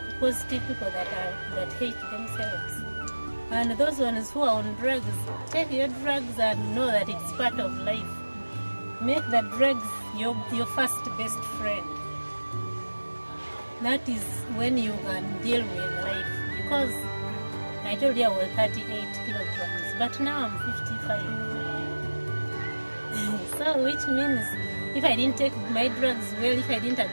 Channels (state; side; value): inverted; both; correlation -1.00